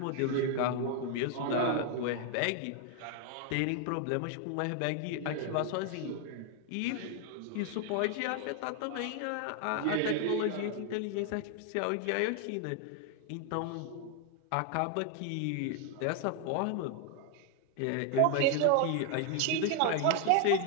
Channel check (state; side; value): different; both; correlation 0.00